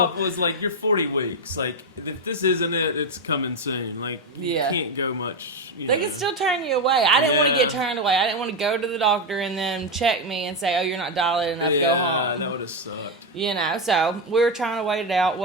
Was like, you're 40 weeks. Like, if this isn't it, it's coming soon. Like, Yeah. you can't go much. They can still turn you away. I didn't want to Yeah. get turned away. I didn't want to go to the doctor and then check me and say, oh, you're not dilated enough, go home. That would have sucked. So we were trying to wait it out.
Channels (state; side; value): normal; both; correlation 0.07